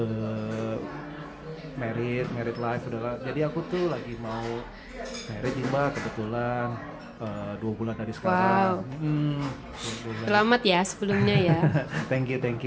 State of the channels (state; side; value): identical; both; correlation 1.00